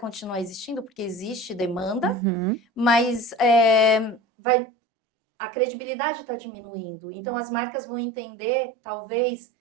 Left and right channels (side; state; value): left; drops out; at 4.2 s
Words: existindo, porque existe demanda, Uhum. mas a credibilidade está diminuindo. Então, as marcas vão entender, talvez,